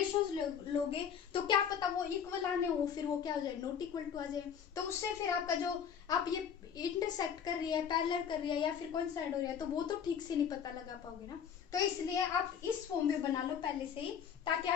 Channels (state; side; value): quieter; right; 7.9 dB